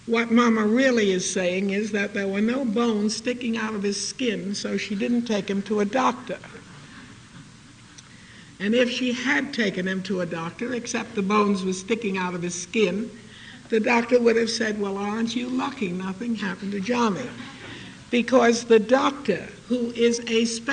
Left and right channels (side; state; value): both; identical; correlation 1.00